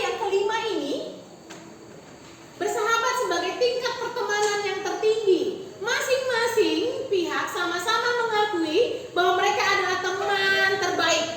kelima ini bersahabat sebagai tingkat pertemanan yang tertinggi. Masing-masing pihak sama-sama mengakui bahwa mereka adalah teman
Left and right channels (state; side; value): identical; both; correlation 1.00